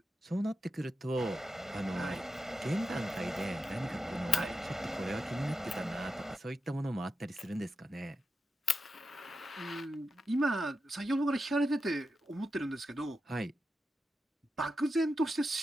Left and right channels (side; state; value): both; normal; correlation 0.89